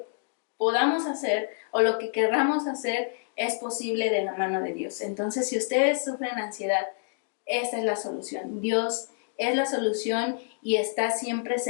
podamos hacer o lo que querramos hacer es posible de la mano de Dios. Entonces, si ustedes sufren ansiedad, esta es la solución, Dios es la solución y está siempre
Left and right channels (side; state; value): right; silent; digital silence